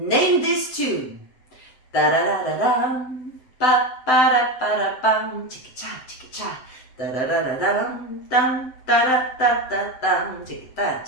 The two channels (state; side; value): late; right; 7.8 ms